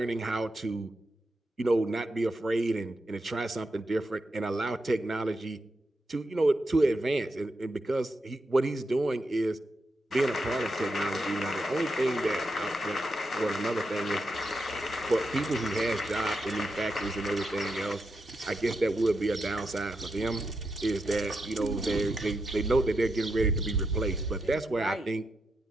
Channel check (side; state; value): both; normal; correlation 0.85